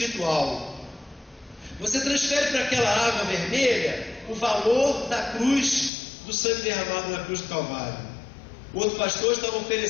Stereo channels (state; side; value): drops out; right; at 5.9 s